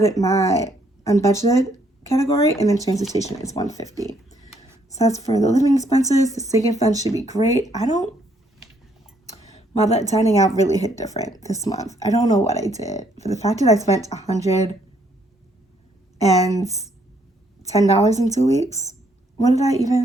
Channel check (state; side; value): normal; both; correlation 0.69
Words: it my unbudgeted category, and then transportation is $150. So that's for the living expenses. The sinking fund should be great. Well, that dining out really hit different this month. I don't know what I did. For the fact that I spent $110 in 2 weeks, what did I